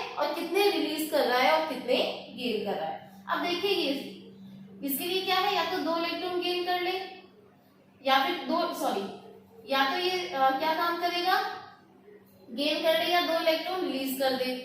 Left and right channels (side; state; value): both; identical; correlation 1.00